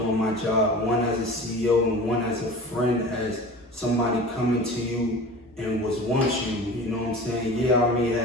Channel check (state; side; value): normal; both; correlation 0.37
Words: my job, one as a CEO and one as a friend, as somebody coming to you and wants you, you know what I'm saying? Yeah, I may